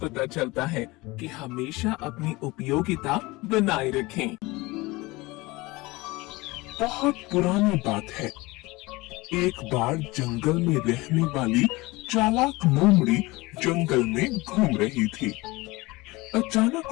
चलता है कि हमेशा अपनी उपयोगिता बनाए रखें। बहुत पुरानी बात है। एक बार जंगल में रहने वाली चालाक लोमड़ी जंगल में घूम रही थी। अचानक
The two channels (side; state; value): right; quieter; 22.1 dB